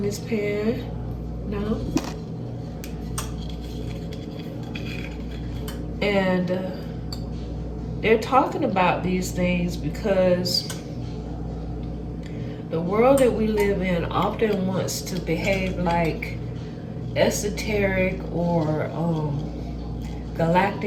this pan now, and they're talking about these things because the world that we live in often wants to behave like esoteric or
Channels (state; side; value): identical; both; correlation 1.00